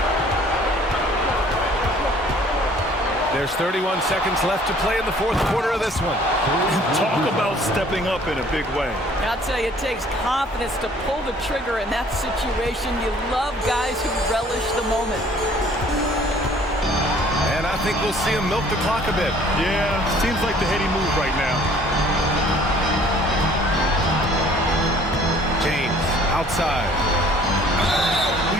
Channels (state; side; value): normal; both; correlation 0.56